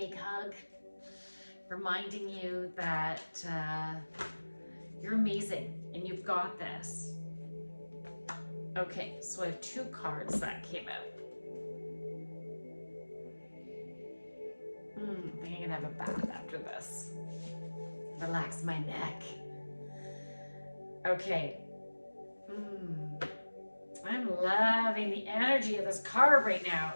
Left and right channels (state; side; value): inverted; both; correlation -1.00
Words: hug, reminding you that you're amazing and you've got this. Okay, so I have 2 cards that came out. I think I'm gonna have a bath after this. Relax my neck. Okay. I'm loving the energy of this card right now.